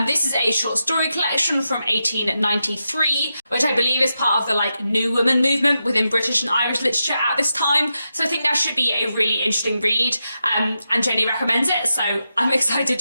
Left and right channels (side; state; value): both; inverted; correlation -0.88